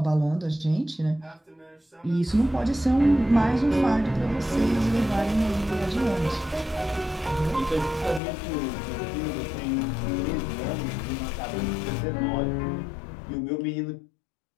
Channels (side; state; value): right; drops out; at 8.2 s